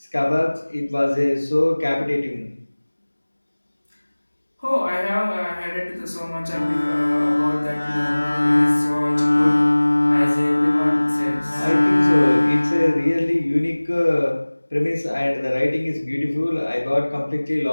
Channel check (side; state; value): both; inverted; correlation -1.00